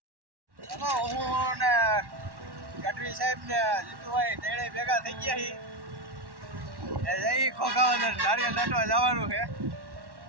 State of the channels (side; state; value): left; late; 1.1 ms